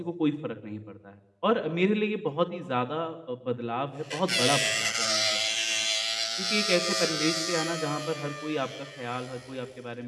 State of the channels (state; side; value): identical; both; correlation 1.00